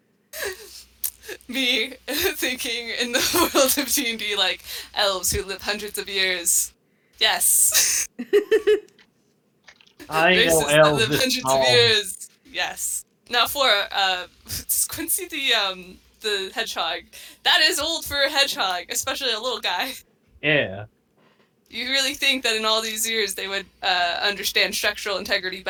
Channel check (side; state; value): both; identical; correlation 1.00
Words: Me thinking in the world of D&D, like elves who live hundreds of years. Yes. I know Races that elves live this hundreds tall. of years. Yes. Now for Quincy the hedgehog. That is old for a hedgehog, especially a little guy. Yeah. You really think that in all these years they would understand structural integrity